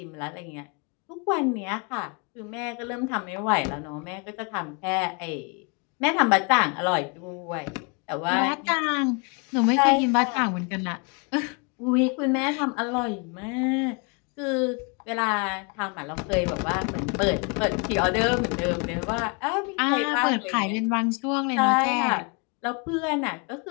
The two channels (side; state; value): right; quieter; 33.4 dB